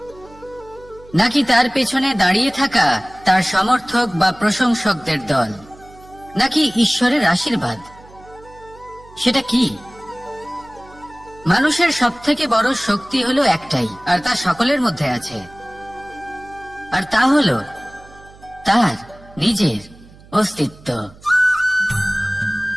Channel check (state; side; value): noise; right; hum, 23 dB below the sound